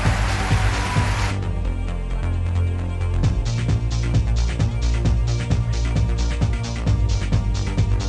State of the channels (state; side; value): identical; both; correlation 1.00